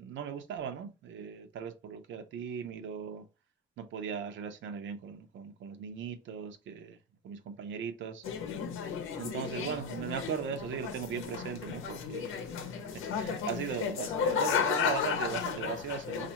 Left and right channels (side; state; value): both; normal; correlation 0.06